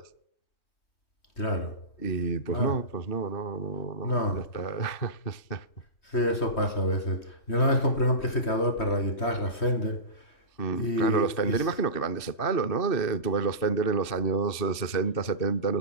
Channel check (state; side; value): late; right; 3.2 ms